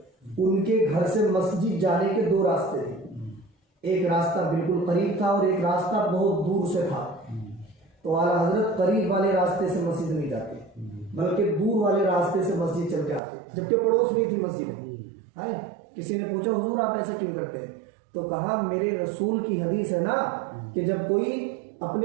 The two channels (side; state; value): left; drops out; at 13.2 s